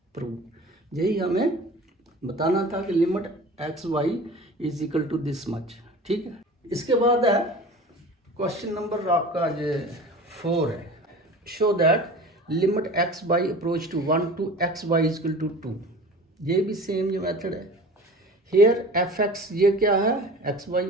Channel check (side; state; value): both; normal; correlation 0.39